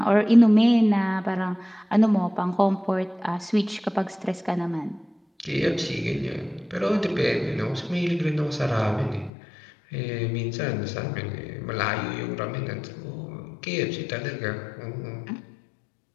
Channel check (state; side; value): drops out; right; at 9.3 s